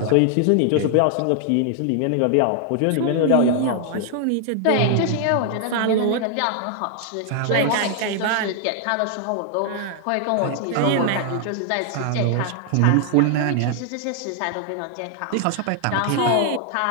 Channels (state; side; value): different; both; correlation 0.00